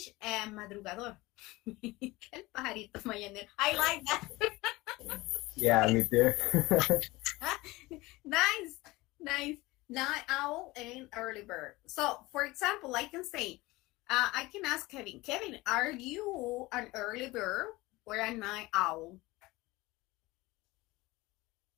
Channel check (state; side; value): quieter; right; 20.9 dB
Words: madrugador. El pajarito mañanero. I like that. Yeah, me too. Nice. Night owl and early bird. So, for example, I can say, I can ask Kevin, are you an early bird or a night owl?